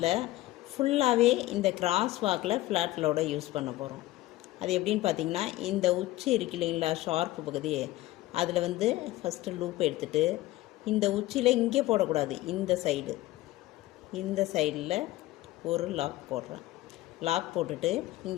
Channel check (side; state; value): right; quieter; 17.1 dB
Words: ஃபுல்லாகவே இந்த கிராஸ் வாக்கில் ஃப்ளாட் லோடை யூஸ் பண்ண போகிறோம். அது எப்படின்னு பார்த்தீங்கன்னா, இந்த உச்சி இருக்கு இல்லைங்களா, ஷார்ப்பு பகுதி, அதில் வந்து ஃபஸ்ட்டு லூப் எடுத்துகிட்டு இந்த உச்சியில் இங்கே போடக்கூடாது, இந்த சைடில் ஒரு லாக் போடுறேன். லாக் போட்டுட்டு